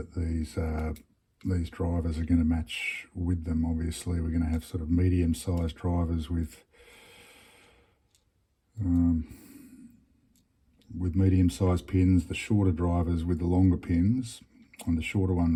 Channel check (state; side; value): identical; both; correlation 1.00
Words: these drivers are going to match with them. Obviously, we're going to have sort of medium-sized drivers with medium-sized pins, the shorter drivers with the longer pins, and the shorter